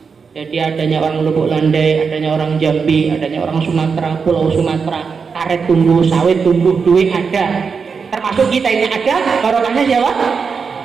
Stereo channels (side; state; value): left; quieter; 5.6 dB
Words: Jadi adanya orang Lubuk Landai, adanya orang Jambi, adanya orang Sumatera, Pulau Sumatera, karet tumbuh, sawit tumbuh, duit ada. Termasuk kita ini ada, barokahnya siapa?